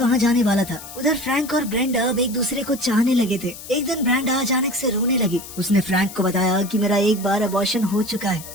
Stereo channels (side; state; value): left; noise; hiss, 14 dB below the sound